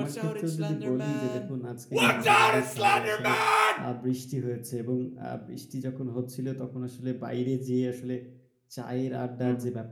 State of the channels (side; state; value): both; identical; correlation 1.00